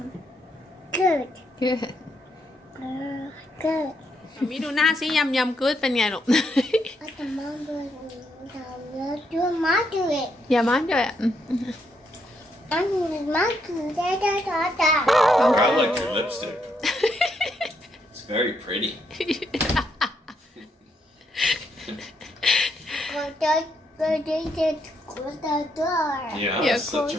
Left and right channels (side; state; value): both; normal; correlation 0.77